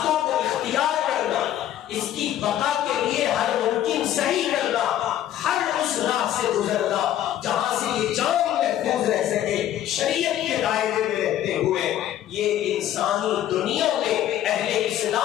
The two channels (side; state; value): right; quieter; 12.0 dB